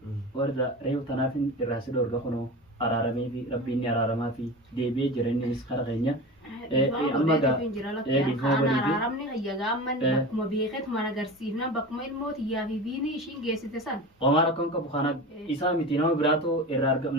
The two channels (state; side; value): normal; both; correlation 0.30